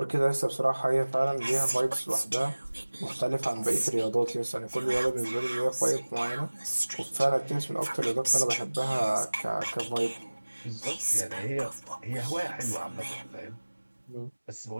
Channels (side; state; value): both; inverted; correlation -1.00